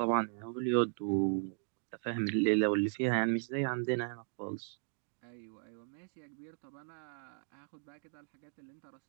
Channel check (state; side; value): silent; left; digital silence